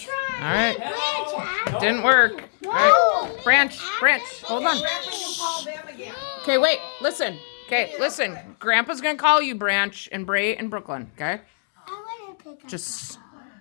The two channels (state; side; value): silent; right; 63 dB below the other